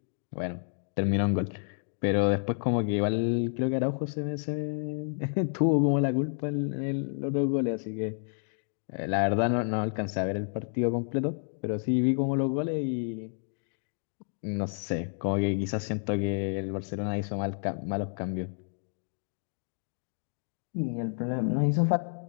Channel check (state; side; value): silent; right; digital silence